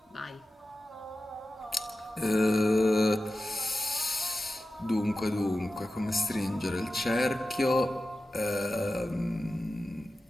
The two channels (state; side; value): normal; both; correlation 0.93